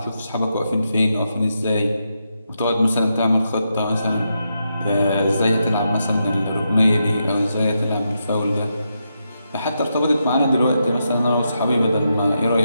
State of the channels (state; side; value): inverted; both; correlation -0.84